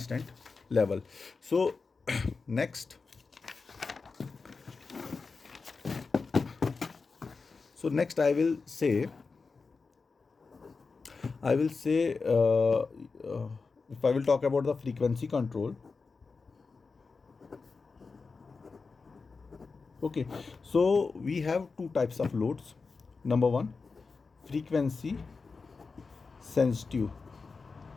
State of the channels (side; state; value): right; quieter; 4.5 dB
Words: level. So next I will say if I will talk about the frequency control. Okay, so we have two types of loads. Number one, frequency sensitive